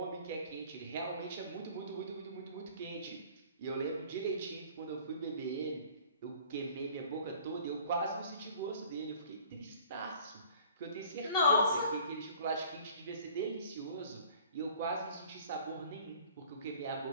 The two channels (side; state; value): both; inverted; correlation -0.49